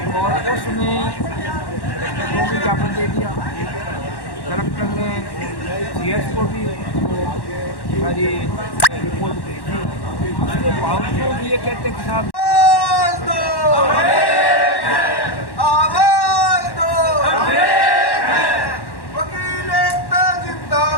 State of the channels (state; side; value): late; right; 1.1 ms